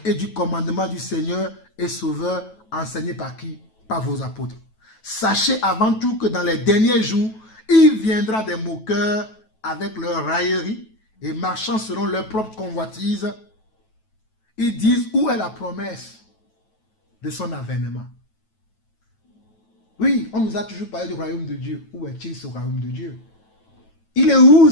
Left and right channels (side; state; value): right; late; 9.2 ms